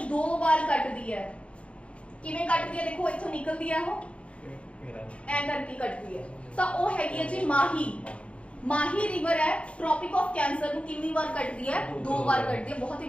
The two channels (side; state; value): right; late; 0.062 ms